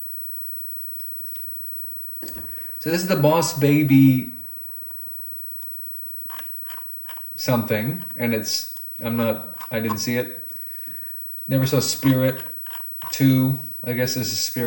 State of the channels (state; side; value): identical; both; correlation 1.00